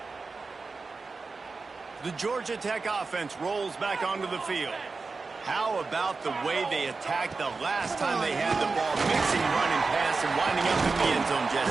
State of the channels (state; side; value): quieter; left; 4.2 dB